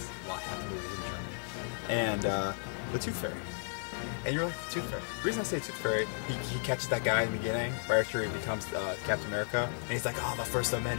a lot half the movies in Germany. And the Tooth Fairy. And you're like, the Tooth Fairy. The reason I say Tooth Fairy, he catches that guy in the beginning, right after he becomes Captain America, and he's like, oh, the first of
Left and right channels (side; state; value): right; silent; 55 dB below the other